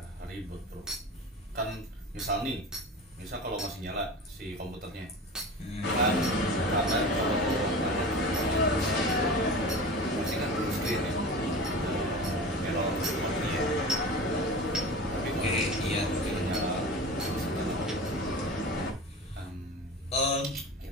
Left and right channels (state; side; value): normal; both; correlation 0.32